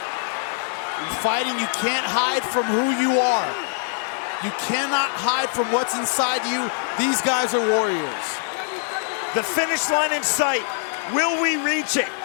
In fighting, you can't hide from who you are. You cannot hide from what's inside you. These guys are warriors. The finish line in sight. Will we reach it?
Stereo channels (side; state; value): right; silent; 60 dB below the other